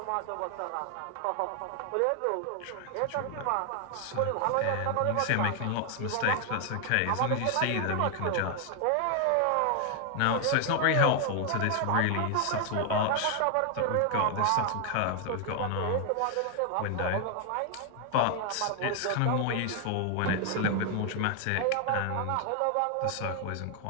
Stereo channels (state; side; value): different; both; correlation 0.00